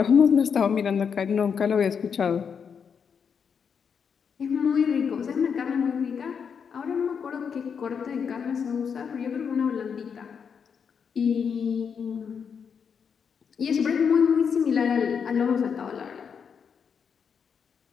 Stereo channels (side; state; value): right; quieter; 6.7 dB